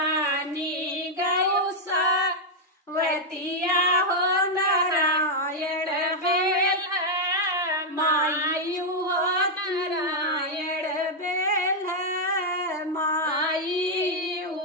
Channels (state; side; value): normal; both; correlation -0.02